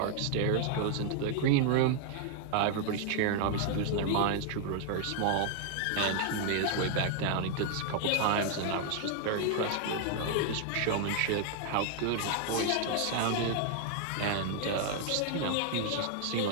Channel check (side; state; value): both; different; correlation 0.00